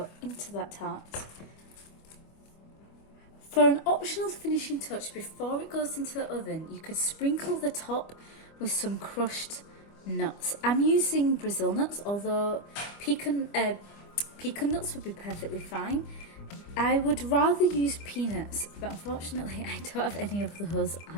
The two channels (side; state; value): right; late; 25 ms